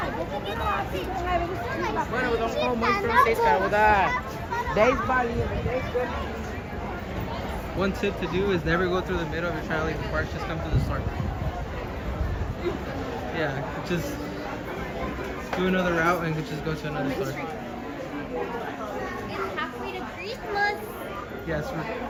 Bueno, vamos muy francesa, ¿verdad? 10 balinhas, 10 balinhas. One tip to do is never go through the middle if you're trying to leave the park. Just come to the store. Yeah, just do another route and just go to another store. It's halfway to Christmas. Yes,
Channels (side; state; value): both; identical; correlation 1.00